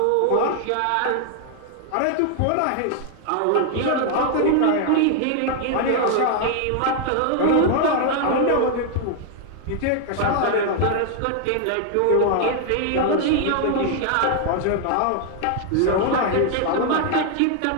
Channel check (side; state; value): both; different; correlation 0.00